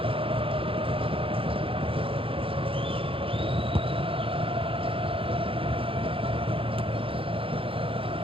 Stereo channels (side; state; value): left; late; 0.26 ms